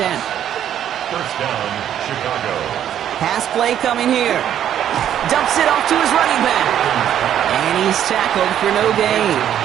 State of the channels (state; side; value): quieter; left; 10.4 dB